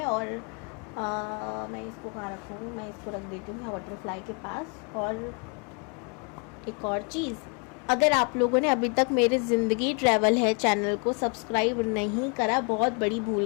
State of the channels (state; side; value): quieter; right; 36.3 dB